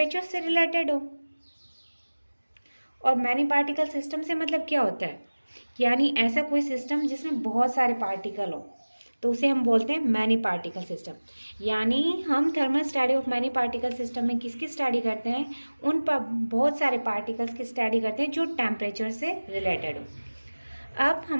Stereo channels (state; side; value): inverted; both; correlation -1.00